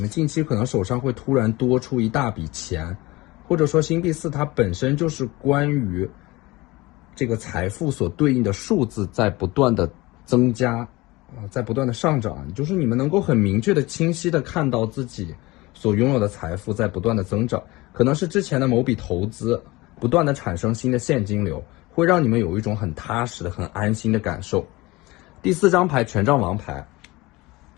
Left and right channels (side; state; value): right; quieter; 21.5 dB